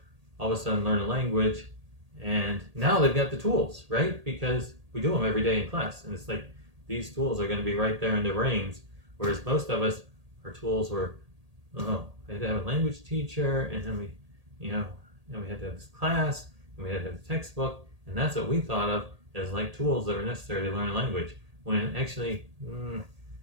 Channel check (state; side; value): late; left; 1.8 ms